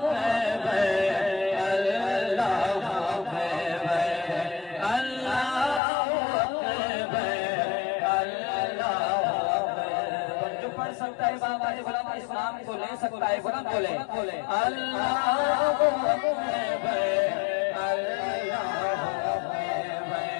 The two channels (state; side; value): drops out; right; at 5.8 s